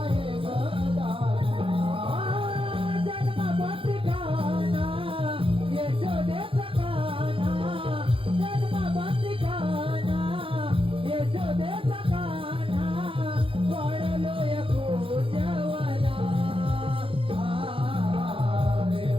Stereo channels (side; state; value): left; late; 0.26 ms